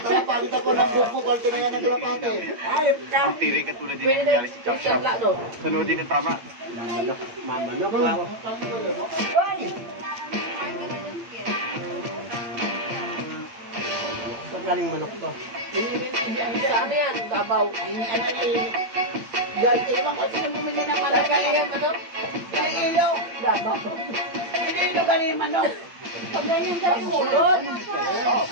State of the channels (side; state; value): left; late; 8.8 ms